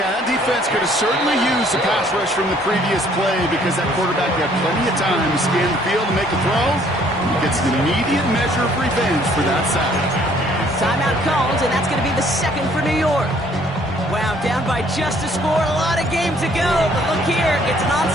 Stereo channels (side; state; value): both; normal; correlation 0.61